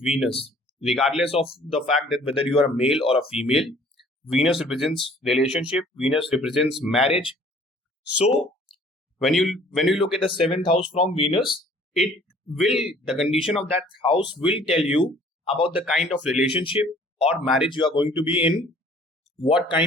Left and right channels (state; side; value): normal; both; correlation 0.54